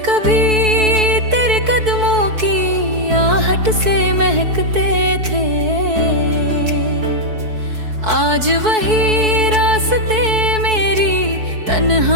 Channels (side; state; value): left; late; 4.6 ms